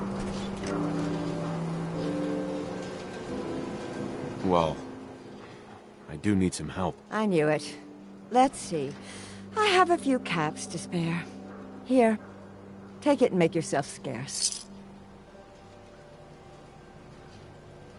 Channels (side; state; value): both; identical; correlation 1.00